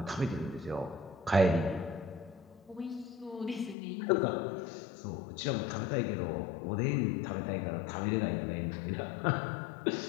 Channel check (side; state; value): right; drops out; at 3.8 s